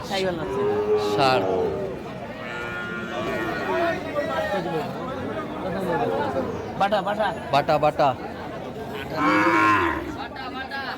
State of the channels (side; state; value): both; identical; correlation 1.00